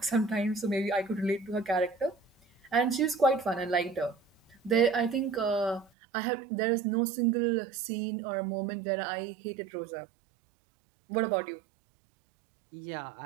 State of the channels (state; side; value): drops out; left; at 5.9 s